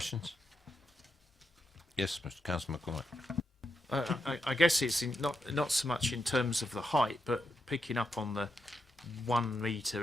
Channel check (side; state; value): both; normal; correlation 0.84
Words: Yes, Mr. Councillor McCormick. I guess it's not so much in terms of the height, but picking up on the 1